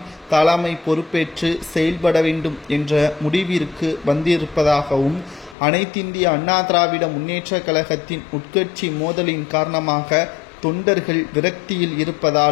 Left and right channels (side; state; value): right; drops out; at 5.6 s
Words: தலைமை பொறுப்பேற்று செயல்பட வேண்டும் என்ற முடிவிற்கு வந்திருப்பதாகவும், அனைத்திந்திய அண்ணா திராவிட முன்னேற்ற கழகத்தின் உட்கட்சி மோதலின் காரணமாக தொண்டர்கள் விரக்தியில்